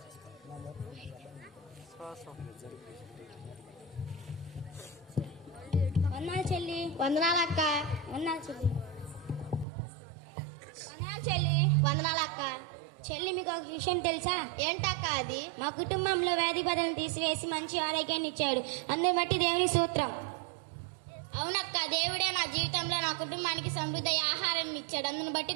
వందనాలు చెల్లి. వందనాలు అక్క. వందనాలు చెల్లి. వందనాలు చెల్లి. వందనాలు అక్క. చెల్లి మీకు ఒక విషయం తెలుసా? ఏంటక్క అది? మా కుటుంబంలో వ్యాధి బాధను తీసివేసి మంచి ఆరోగ్యాన్ని ఇచ్చాడు. అందుని బట్టి దేవుని సూత్రం. అవునక్క, దేవుడే నా జీవితంలో నా కుటుంబానికి సమృద్ధి ఆహారాన్ని ఇచ్చాడు. అందుని బట్టి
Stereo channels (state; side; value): drops out; left; at 9.7 s